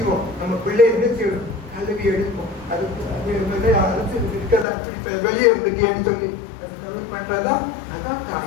நம்ம பிள்ளை என்ன செய்யணும், கல்வி எடுப்போம். அது அரசு இருக்கிறதா அப்படி வெளியே இருந்துட்டேன்னு சொல்லி பண்றதா, அதான்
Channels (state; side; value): drops out; right; at 4.7 s